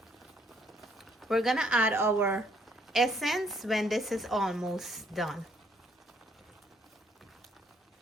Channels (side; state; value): both; normal; correlation 0.67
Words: We're gonna add our essence when this is almost done.